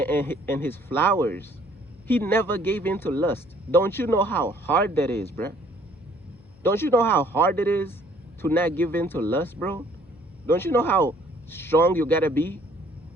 his flowers. He never gave in to lust. Don't you know how hard that is, bruh? Don't you know how hard it is to not give in to lust, bro? Don't you know how strong you gotta be?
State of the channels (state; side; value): noise; left; hum, 27 dB below the sound